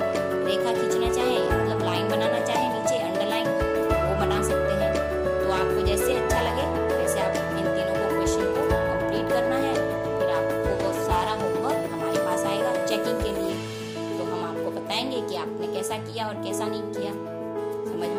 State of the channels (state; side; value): identical; both; correlation 1.00